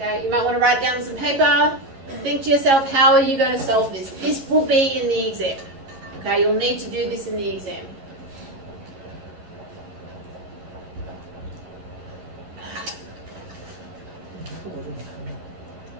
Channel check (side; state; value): left; late; 11 ms